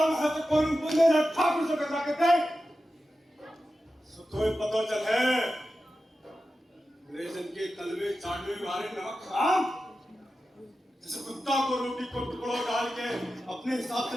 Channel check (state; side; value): normal; both; correlation 0.92